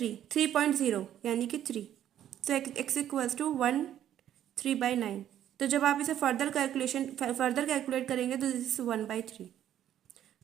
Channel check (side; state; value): left; quieter; 11.1 dB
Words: यानी कि 3। सो एक्स इक्वल्स टू 1/3/9। तो जब आप इसे फर्दर कैलकुलेट करेंगे तो दिस इज 1/3।